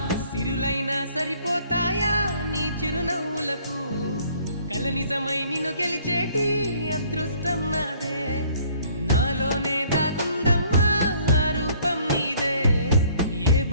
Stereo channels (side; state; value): both; inverted; correlation -0.58